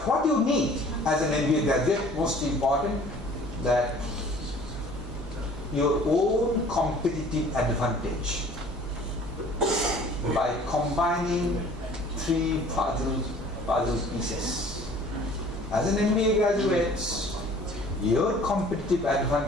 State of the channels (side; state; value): both; normal; correlation 0.50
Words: what you need as an MBA graduate, most important, that your own competitive advantage by combining three puzzle pieces. As an MBA graduate, your competitive